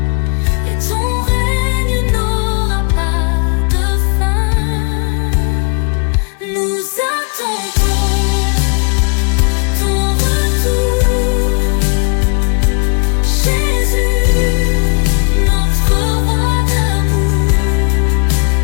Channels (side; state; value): right; quieter; 36.5 dB